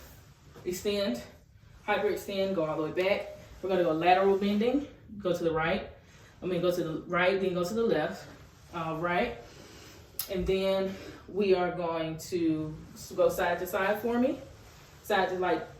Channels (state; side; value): identical; both; correlation 1.00